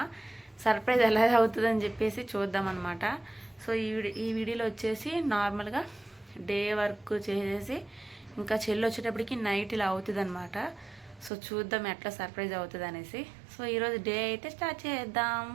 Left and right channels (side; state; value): left; drops out; at 11.3 s